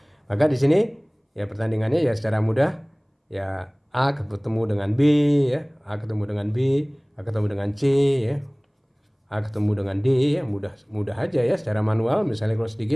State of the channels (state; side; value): identical; both; correlation 1.00